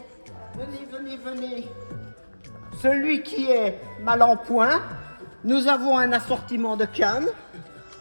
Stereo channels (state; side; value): inverted; both; correlation -1.00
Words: venez. Celui qui est mal en point, nous avons un assortiment de cannes.